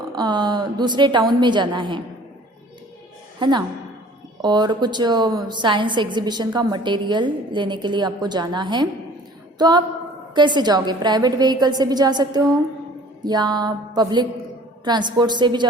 दूसरे टाउन में जाना है ना, और कुछ साइंस एग्जीबिशन का मटेरियल लेने के लिए आपको जाना है। तो आप कैसे जाओगे, प्राइवेट व्हीकल से भी जा सकते हो या पब्लिक ट्रांसपोर्ट से भी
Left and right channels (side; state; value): both; normal; correlation 0.50